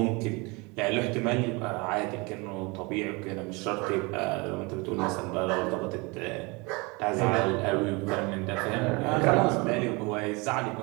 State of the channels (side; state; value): left; quieter; 27.2 dB